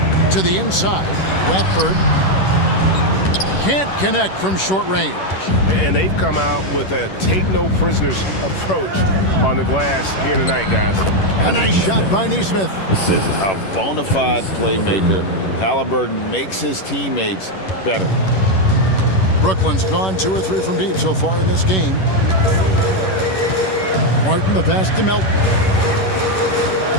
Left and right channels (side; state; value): right; late; 11 ms